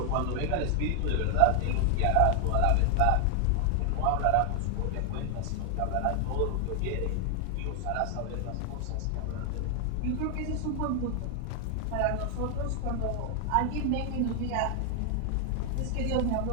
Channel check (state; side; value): different; both; correlation 0.00